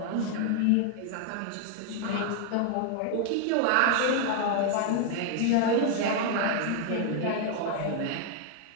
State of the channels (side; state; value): both; different; correlation 0.00